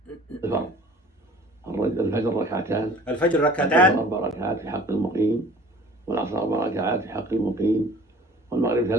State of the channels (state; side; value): normal; both; correlation 0.48